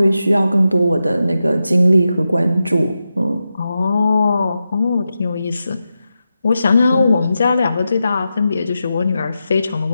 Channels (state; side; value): inverted; both; correlation -0.90